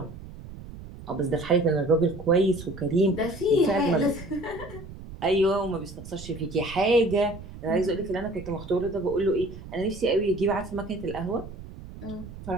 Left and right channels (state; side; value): noise; right; rumble, 14 dB below the sound